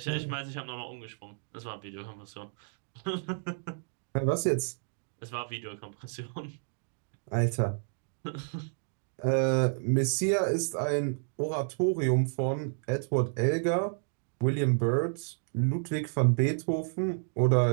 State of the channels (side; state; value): left; silent; digital silence